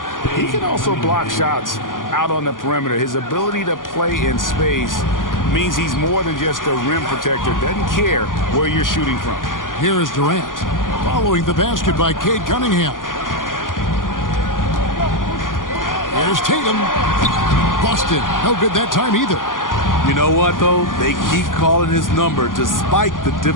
he can also block shots out on the perimeter. His ability to play in space means he's more than just a rim protector. Doesn't care where you're shooting from. Here is Durant following the basket by Cade Cunningham. Here's Tatum. Busted. No good that time either. You know what, though? They keep calling his number despite the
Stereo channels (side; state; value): right; late; 0.89 ms